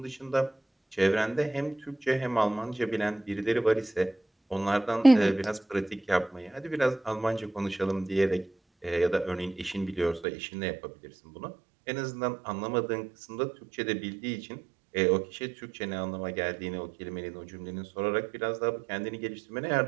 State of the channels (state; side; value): drops out; left; at 10.2 s